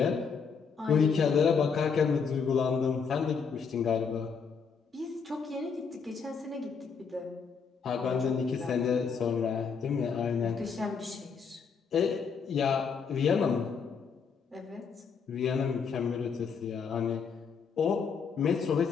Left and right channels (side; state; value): right; quieter; 5.9 dB